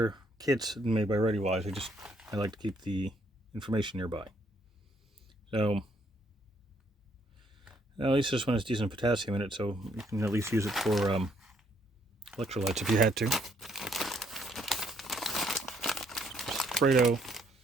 kits made by ReadyWise. I like to keep the information nearby. So at least this one has decent potassium in it, so you can at least use it for electrolytes if you had to. Alfredo.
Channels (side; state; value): both; normal; correlation 0.69